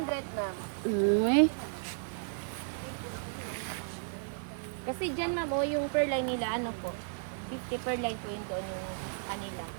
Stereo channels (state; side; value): silent; left; digital silence